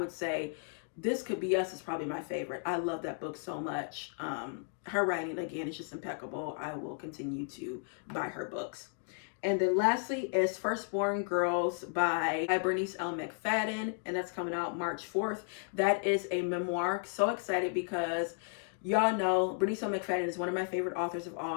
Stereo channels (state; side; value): silent; right; 55 dB below the other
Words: say This Could Be Us is probably my favorite. I love that book so much. Her writing, again, is just impeccable. I will continue to buy her books. And then lastly is Firstborn Girls by Bernice L. McFadden, and that's coming out March 4th. That is a memoir. So excited because y'all know Bernice L. McFadden is one of my favorite authors of